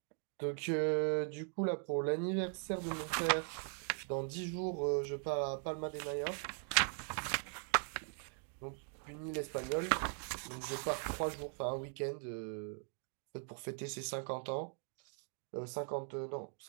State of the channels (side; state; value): left; silent; 51 dB below the other